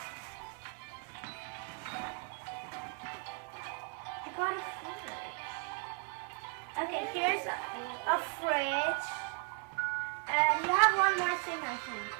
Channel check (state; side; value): quieter; left; 37.1 dB